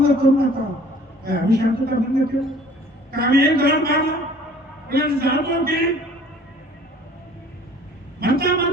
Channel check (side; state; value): both; normal; correlation 0.52